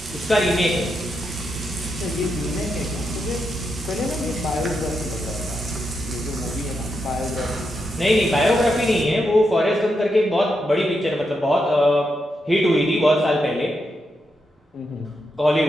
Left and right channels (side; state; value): both; normal; correlation 0.84